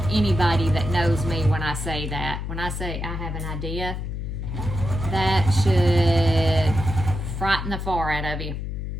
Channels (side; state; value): left; noise; hum, 5 dB below the sound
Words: anybody that knows me when I say that. When I say I have an idea, that should frighten the far out of you.